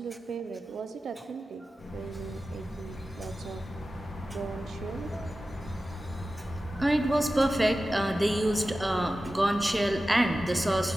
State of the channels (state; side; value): normal; both; correlation 0.94